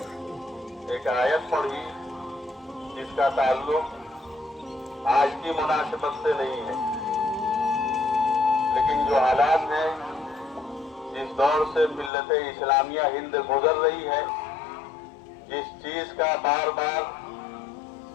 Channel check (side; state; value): right; drops out; at 12.1 s